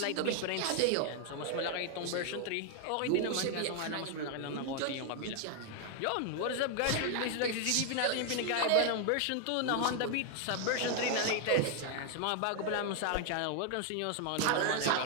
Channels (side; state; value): both; different; correlation 0.00